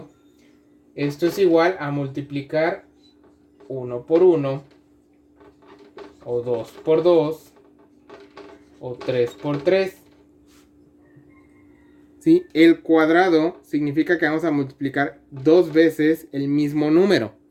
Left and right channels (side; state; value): both; identical; correlation 1.00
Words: esto es igual a multiplicar 1 por 1, o 2 por 2, o 3 por 3. ¿Sí? El cuadrado significa que vamos a multiplicar 2 veces el mismo número.